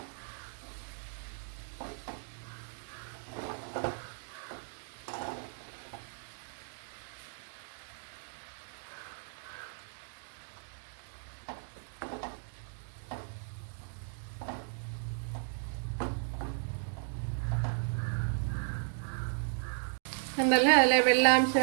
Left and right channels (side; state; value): left; silent; digital silence